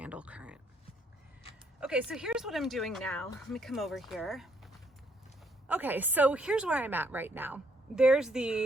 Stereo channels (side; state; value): both; normal; correlation 0.70